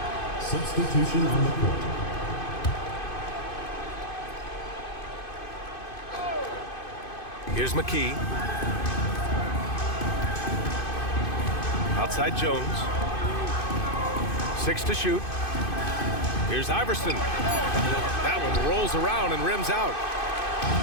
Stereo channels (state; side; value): late; right; 2.5 ms